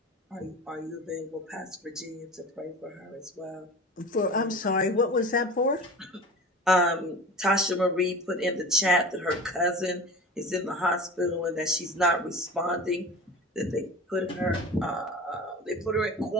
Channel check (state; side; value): normal; both; correlation 0.36